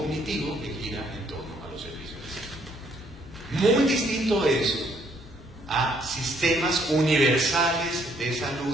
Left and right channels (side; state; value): both; normal; correlation 0.67